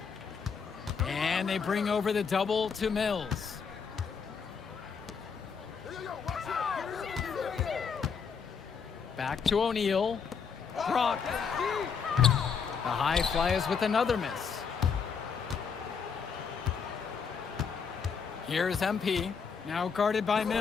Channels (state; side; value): quieter; right; 6.2 dB